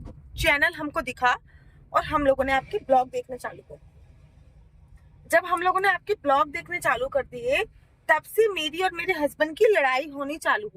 चैनल हमको दिखा और हम लोगों ने आपके ब्लॉग देखने चालू कर दिए। जब हम लोगों ने आपके ब्लॉग देखने चालू कर दिए, तब से मेरी और मेरे हस्बैंड की लड़ाई होनी चालू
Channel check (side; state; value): both; identical; correlation 1.00